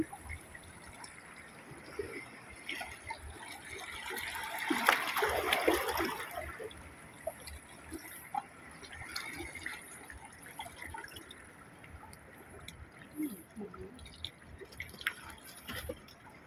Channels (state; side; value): identical; both; correlation 1.00